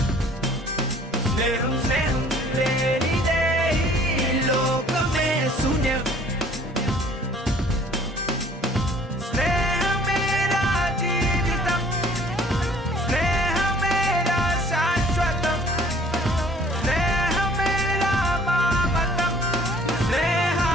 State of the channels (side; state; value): both; normal; correlation 0.55